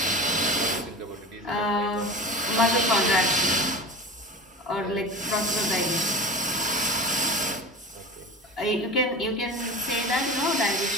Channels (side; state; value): both; normal; correlation 0.33